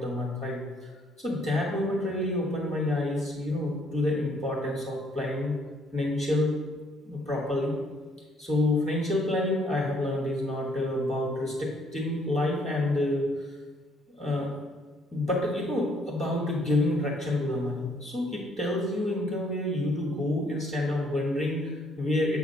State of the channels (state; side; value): normal; both; correlation 0.66